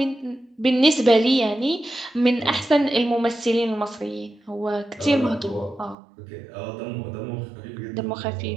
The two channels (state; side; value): drops out; left; at 6.0 s